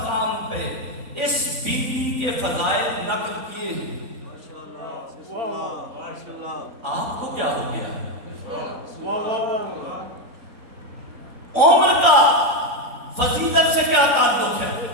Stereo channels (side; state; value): left; late; 3.5 ms